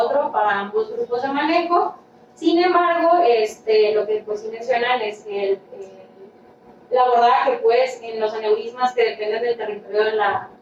para ambos grupos de manejo. Sin embargo, lo que pues sí mencionan es que el abordaje pues en los aneurismas que dependen del territorio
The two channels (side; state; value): both; identical; correlation 1.00